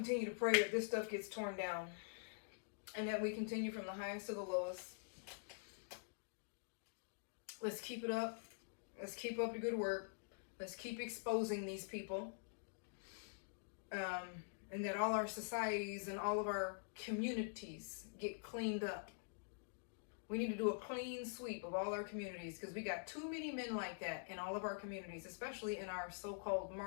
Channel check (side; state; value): right; silent; digital silence